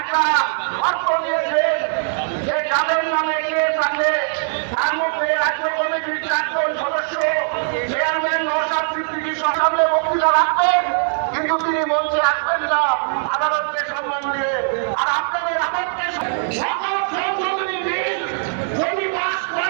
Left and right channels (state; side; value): silent; left; 65 dB below the other